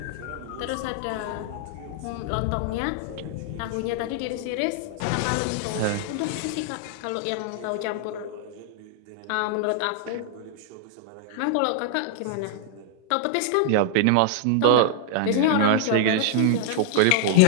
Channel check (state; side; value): different; both; correlation 0.00